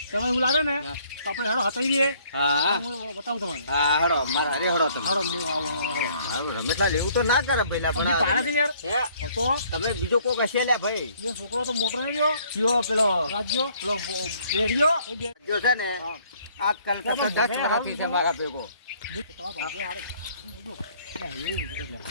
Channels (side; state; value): both; inverted; correlation -0.61